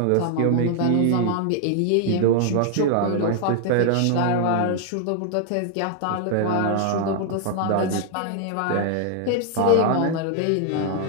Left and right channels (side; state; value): both; different; correlation 0.00